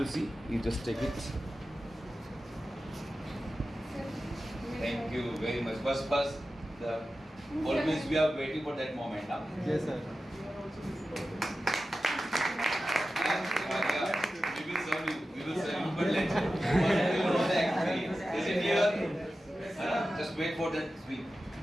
see. You just take it. Thank you very much. First, the always we are waiting for that moment now. Yes, sir. We will serve you, but let's know the experience. Is it clear? Just wait for that speak.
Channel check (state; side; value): normal; both; correlation 0.93